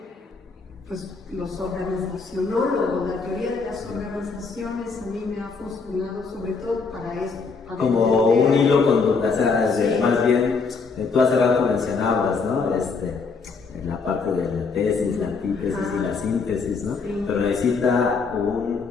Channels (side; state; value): right; quieter; 4.7 dB